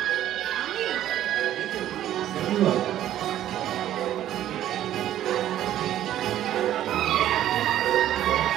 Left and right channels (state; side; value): quieter; left; 12.2 dB